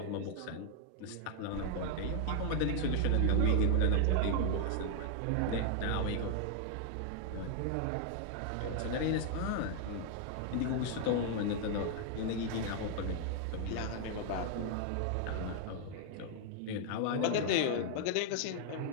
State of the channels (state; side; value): different; both; correlation 0.00